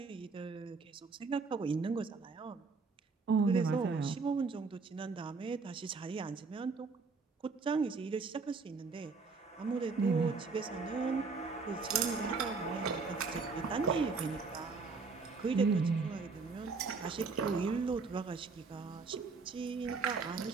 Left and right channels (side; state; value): left; quieter; 4.5 dB